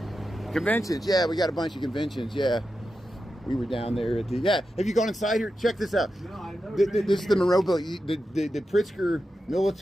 conventions. Yeah, we got a bunch of conventions. Yeah, we were down there at the. Yeah, have you gone inside here? Check this out. No, I've never been This is the Monroe Building. The Pritzker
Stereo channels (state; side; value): normal; both; correlation 0.90